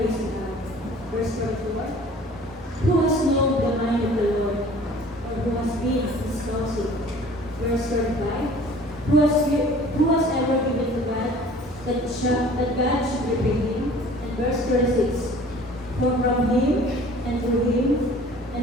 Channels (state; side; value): normal; both; correlation 0.48